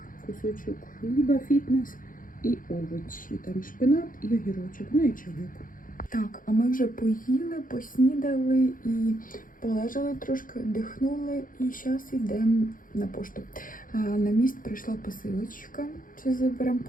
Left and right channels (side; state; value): right; late; 0.40 ms